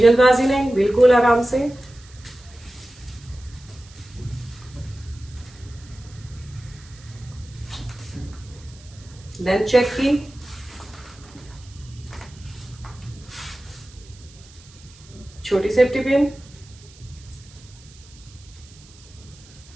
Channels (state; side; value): noise; right; hiss, 23 dB below the sound